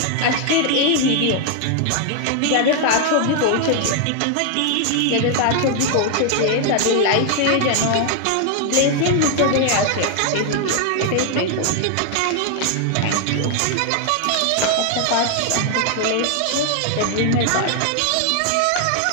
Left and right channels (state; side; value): different; both; correlation 0.00